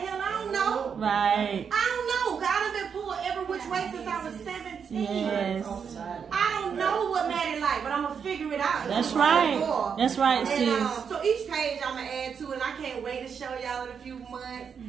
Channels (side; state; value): left; quieter; 6.8 dB